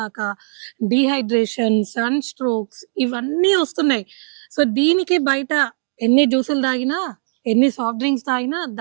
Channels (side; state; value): left; silent; digital silence